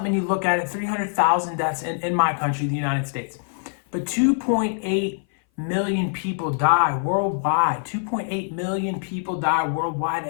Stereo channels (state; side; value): silent; right; 58 dB below the other